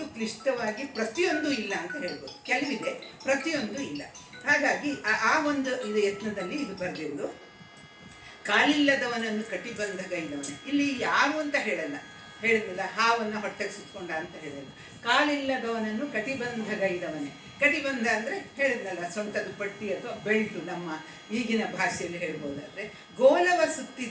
ಕ್ಲಿಷ್ಟವಾಗಿ ಪ್ರತಿಯೊಂದು ಇಲ್ಲ ಅಂತ ಹೇಳ್ಬೋದು. ಕೆಲವಿದೆ, ಪ್ರತಿಯೊಂದು ಇಲ್ಲ. ಹಾಗಾಗಿ ಆ ಒಂದು ಇದು ಯತ್ನದಲ್ಲಿ ಇದು ಬರೆದಿರೋದು. ಕಾಲಿಲ್ಲದವನನ್ನು ಕಟಿಬಂಧಗೈದವನೇ. ಇಲ್ಲಿ ಯಾರು ಅಂತ ಹೇಳಲ್ಲ, ಹೇಳಿದ್ನಲ್ಲ ಹಾವನ್ನು ಹೊಟ್ಟೆಗೆ ಸುತ್ಕೊಂಡ ಅಂತ ಹೇಳಲ್ಲ. ಕಾಲಿಲ್ಲದವನನ್ನು ಕಟಿಬಂಧಗೈದವನೇ. ಕಟಿಬಂಧ ಅಂದರೆ ಹೇಳಿದ್ನಲ್ಲ ಸೊಂಟದ ಪಟ್ಟಿ ಅಥವಾ ಬೆಲ್ಟು ನಮ್ಮ ಈಗಿನ ಭಾಷೆಯಲ್ಲಿ ಹೇಳ್ಬೋದಾದರೆ. ಗೋಲವ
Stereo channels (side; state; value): both; identical; correlation 1.00